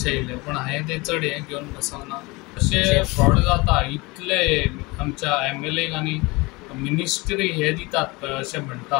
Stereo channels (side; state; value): right; quieter; 24.4 dB